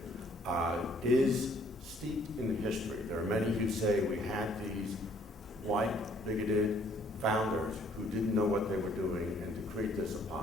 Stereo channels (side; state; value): both; normal; correlation 0.62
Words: is steeped in history. There are many who say we had these white, bigoted founders who didn't know what they were doing and decreed this